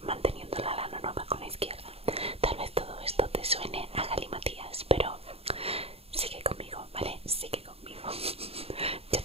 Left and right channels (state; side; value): late; left; 0.29 ms